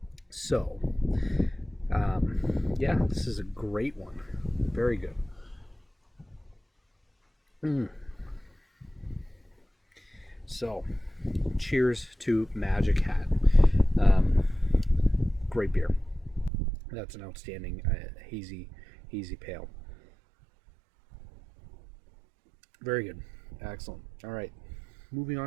So, Yeah, this is a great one. Very good. So, cheers to Magic Hat. Um, Great beer. That's an outstanding hazy pale. Very good. Excellent. All right. Moving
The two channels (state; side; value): drops out; left; at 16.5 s